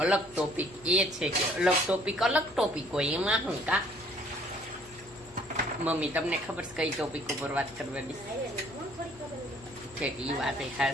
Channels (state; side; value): noise; left; hum, 23 dB below the sound